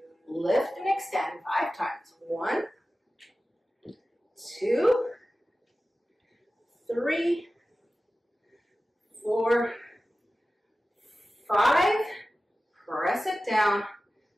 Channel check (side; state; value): both; normal; correlation 0.95